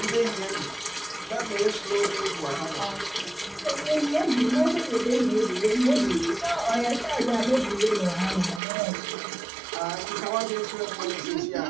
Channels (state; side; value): drops out; left; at 8.6 s